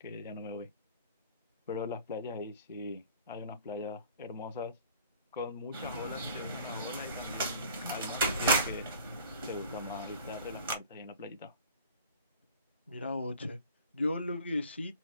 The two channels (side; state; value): both; inverted; correlation -0.47